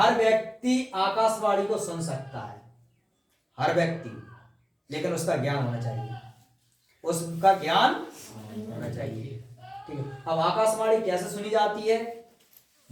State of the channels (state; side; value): identical; both; correlation 1.00